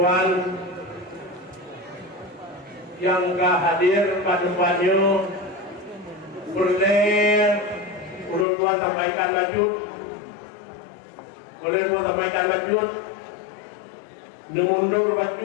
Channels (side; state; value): right; drops out; at 8.5 s